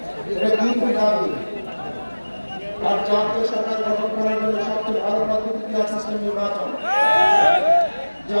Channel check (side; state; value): both; inverted; correlation -1.00